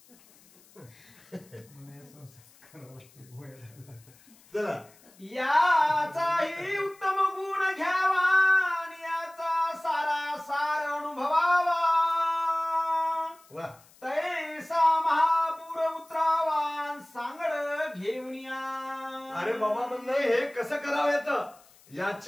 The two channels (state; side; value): noise; left; hiss, 27 dB below the sound